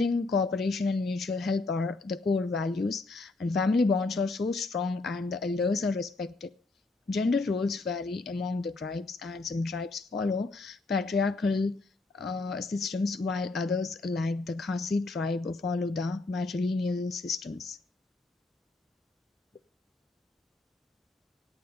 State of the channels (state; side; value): quieter; right; 3.4 dB